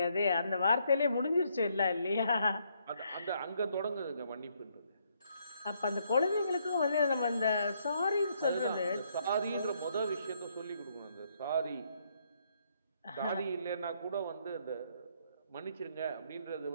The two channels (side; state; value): both; inverted; correlation -0.72